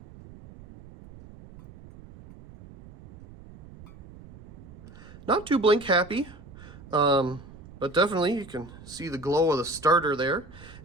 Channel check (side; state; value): right; noise; rumble, 19 dB below the sound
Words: Not too blink happy, but definitely you can see the glow of the starter there.